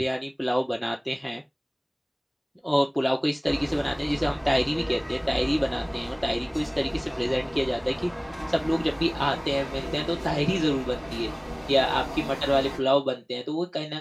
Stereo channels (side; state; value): both; identical; correlation 1.00